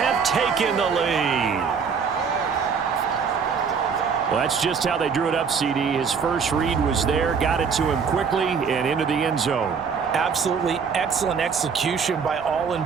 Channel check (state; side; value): quieter; left; 6.1 dB